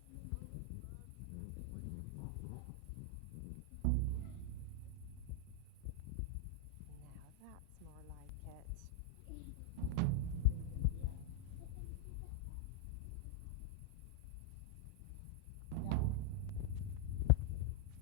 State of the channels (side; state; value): both; different; correlation 0.00